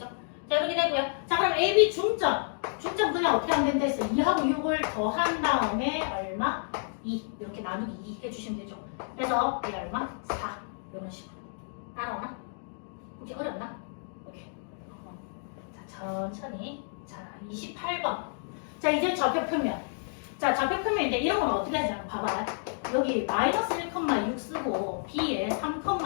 자, 이렇게 되고요. 자, 그럼 AB 중점. 중점 그냥 어떻게 하면 된다 했어? 2하고 6을 더한 다음에 얼마? 2. 이렇게 나누기 2 해주시면 되죠. 그래서 얘 얼마? 4. 이런 식으로. 따라오나? 이게 어렵나? 오케이. 자, 천천히. 자, 28번. 자, 이제 좌표표면. 자, 좌표표면인데 이런 건 어떻게 하냐? 봐봐. 여기 마이너스 1,6 쓰고 B에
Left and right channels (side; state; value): right; silent; digital silence